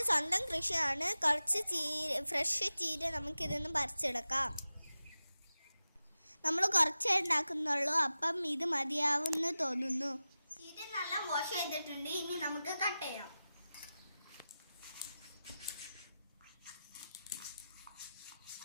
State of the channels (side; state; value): both; inverted; correlation -0.94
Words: സ്വന്തം കൃഷിയാണ്. കുറച്ച് ഫ്രഷ് ചീര നമുക്കിതൊന്ന് പറിച്ചെടുക്കാം. നമ്മൾ കുറച്ചേ ഉണ്ടാക്കുന്നുള്ളൂ, അപ്പം ഇത് മതിയാവുമെന്ന് തോന്നുന്നു. ചീര നല്ല വാഷ് ചെയ്തിട്ടുണ്ട്. ഇനി നമുക്ക് കട്ട് ചെയ്യാം.